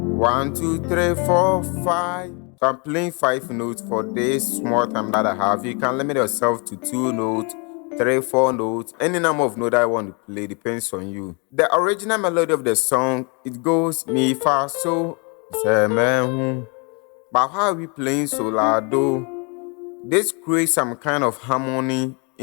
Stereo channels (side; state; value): right; quieter; 33.2 dB